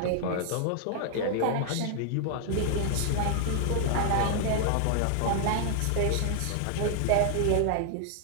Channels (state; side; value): different; both; correlation -0.01